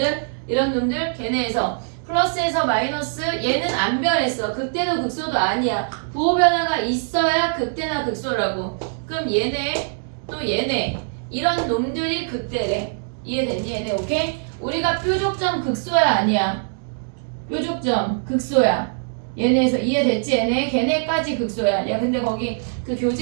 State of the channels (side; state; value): left; silent; digital silence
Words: 이런 놈들? 걔네에서 플러스에서 마이너스 얘는 안 변했어. 극대도 극소도 아니야. 부호 변화가 있어야 극대나 극소라고. 그럼 얘네 또 얘네 이런 놈들이 극대래. 이해됐니 얘네? 오케이? 우리가 뾰족점 극소야 아니야? 뾰족점 극소야. 얘네에서 이해됐지 얘네? 걔네까지 극소야. 야 근데 거기 그